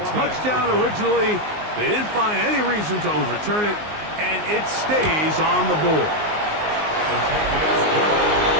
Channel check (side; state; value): left; late; 19 ms